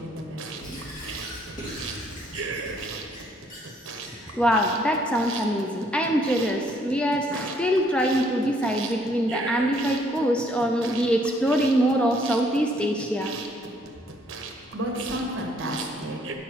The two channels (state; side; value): normal; both; correlation 0.65